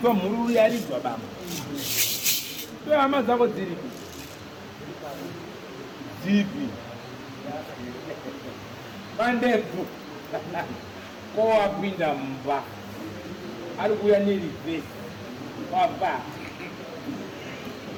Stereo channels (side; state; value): both; identical; correlation 1.00